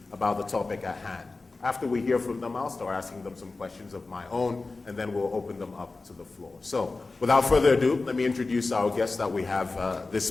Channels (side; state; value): right; quieter; 3.6 dB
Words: about the topic at hand. After we hear from them, I'll start asking them some questions of my own, and then we'll open them up to the floor. So, without further ado, let me introduce our guest that we have